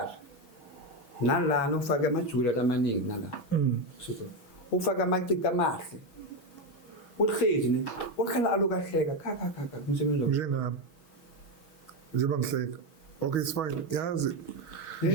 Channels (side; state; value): right; late; 6.3 ms